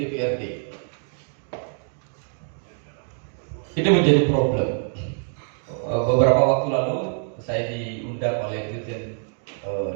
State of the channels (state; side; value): silent; left; 56 dB below the other